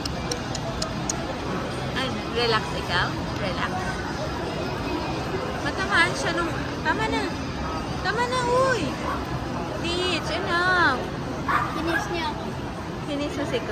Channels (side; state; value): both; identical; correlation 1.00